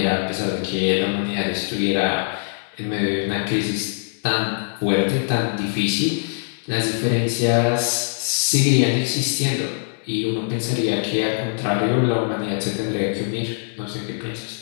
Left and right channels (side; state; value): right; silent; digital silence